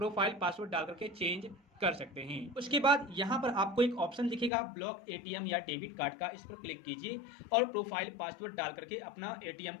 पासवर्ड डाल करके चेंज कर सकते हैं। उसके बाद यहाँ पर आपको एक ऑप्शन दिखेगा ब्लॉक एटीएम या डेबिट कार्ड का, इस पर क्लिक कीजिए और प्रोफाइल पासवर्ड डाल करके अपना एटीएम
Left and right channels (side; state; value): right; drops out; at 4.5 s